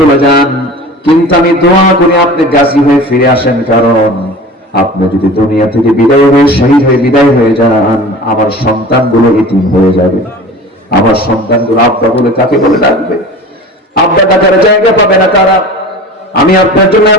যান, কিন্তু আমি দোয়া করি আপনি গাজী হয়ে ফিরে আসেন, কারণ আপনি যদি দুনিয়া থেকে বিদায় হয়ে শহীদ হয়ে বিদায় হয়ে যান, আমার সন্তানগুলো এতিম হয়ে যাবে। আমার সন্তানগুলো আব্বা বলে কাকে বলে ডাকবে? আব্বা ডাকার জায়গা পাবে না কারা? আমি আপনার জন্য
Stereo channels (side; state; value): both; normal; correlation 0.38